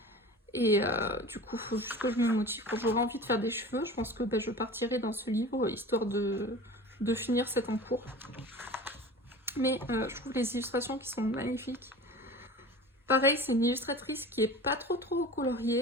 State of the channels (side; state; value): both; normal; correlation 0.37